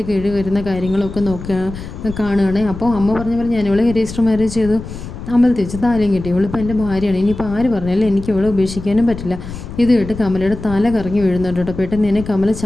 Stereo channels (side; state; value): left; noise; rumble, 11 dB below the sound